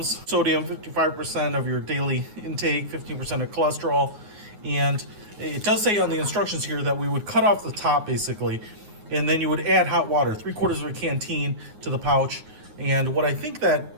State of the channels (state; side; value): late; left; 9.5 ms